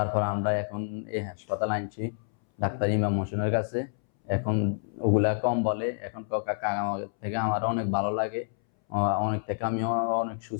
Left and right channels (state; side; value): silent; right; 59 dB below the other